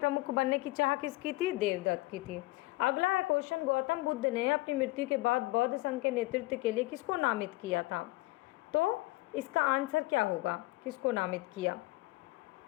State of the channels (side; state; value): right; quieter; 20.7 dB